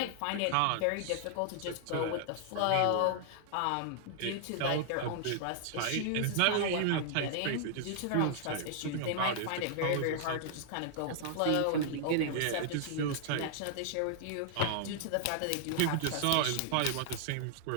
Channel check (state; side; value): different; both; correlation -0.01